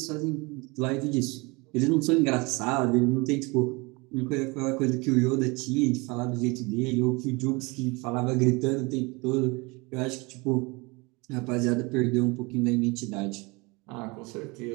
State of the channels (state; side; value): quieter; left; 26.5 dB